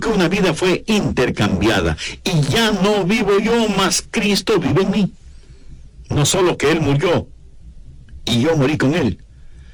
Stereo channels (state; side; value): identical; both; correlation 1.00